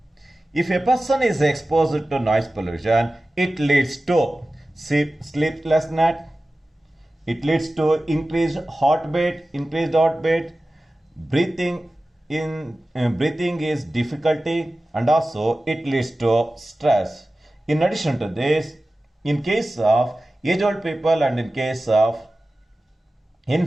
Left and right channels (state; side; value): normal; both; correlation 0.96